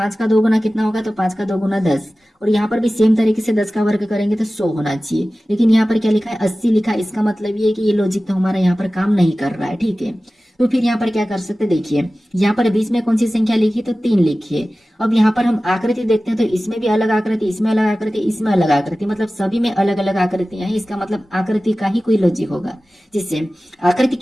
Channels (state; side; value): normal; both; correlation 0.96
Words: का 2 गुना कितना होगा, तो 5 का 2 गुना 10, और यहाँ पर भी सेम तरीके से 10 का वर्ग करेंगे तो 100 होना चाहिए। लेकिन यहाँ पर क्या लिखा है, 80 लिखा है, इसका मतलब ये है कि ये लॉजिक तो हमारा यहाँ पर काम नहीं कर रहा है। ठीक है, तो फिर यहाँ पर क्या कर सकते, देखिए यहाँ पर बीच में कौन सी संख्या लिखी, तो 3 लिखिए। अब यहाँ पर हम आकृति देखते हैं तो इसमें भी अलग आकृति, इसमें अलग आकृति, इसमें अलग आकृति, मतलब सभी में अलग अलग आकृतियां हैं। इसका मतलब आकृति का ही कोई लॉजिक होगा। जिससे आकृति